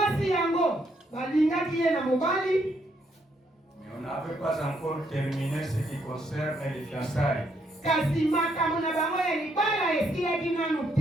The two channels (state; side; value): normal; both; correlation 0.74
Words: yango balingaki ye na mobali. mais on n'avait pas encore terminé ce qui concerne les fiançailles. Kasi makambo na bango ya libala esilaki nanu